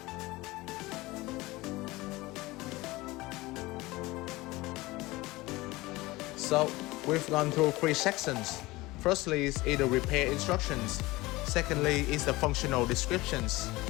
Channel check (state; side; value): quieter; right; 20.5 dB